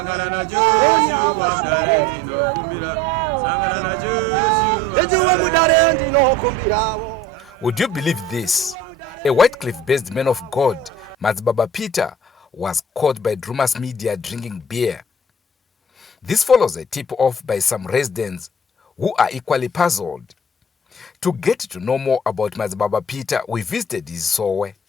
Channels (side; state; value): both; normal; correlation 0.46